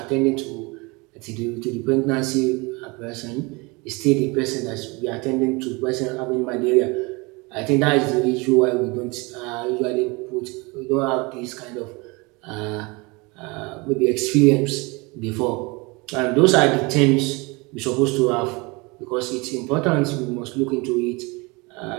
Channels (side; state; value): left; quieter; 26.6 dB